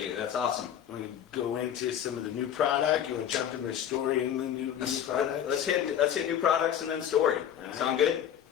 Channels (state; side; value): quieter; right; 9.8 dB